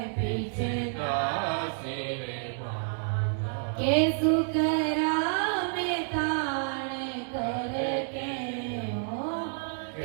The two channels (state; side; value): silent; left; digital silence